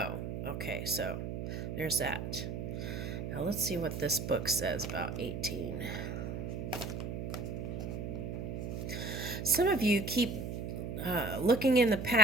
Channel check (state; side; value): noise; right; hum, 5 dB below the sound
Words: Okay, so there's that. Now, let's see what this book says about 18. Some of you keep looking in the